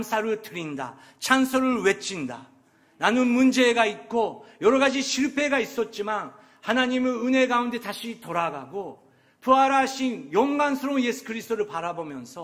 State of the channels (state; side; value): identical; both; correlation 1.00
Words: 드린다. 찬송을 외친다. 나는 문제가 있고 여러 가지 실패가 있었지만 하나님의 은혜 가운데 다시 돌아가고 부활하신 영광스러운 예수 그리스도를